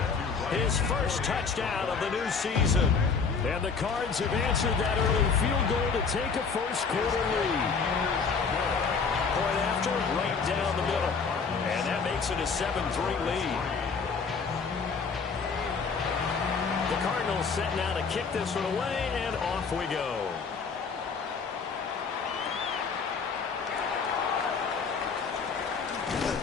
his first touchdown of the new season. And the Cards have answered that early field goal to take a first-quarter lead. Point after, right down the middle. And that makes it a 7-3 lead. The Cardinals set now to kick this one away, and off we go.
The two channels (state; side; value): quieter; right; 5.3 dB